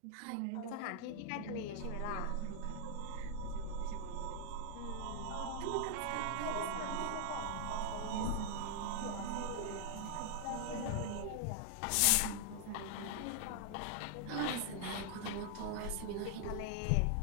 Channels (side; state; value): both; different; correlation 0.00